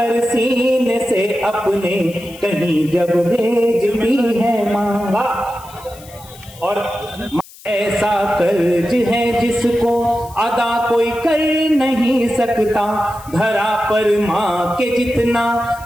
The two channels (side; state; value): left; noise; hiss, 21 dB below the sound